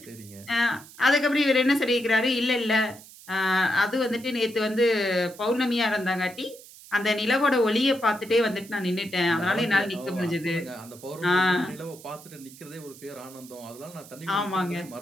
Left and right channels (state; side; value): noise; right; hiss, 20 dB below the sound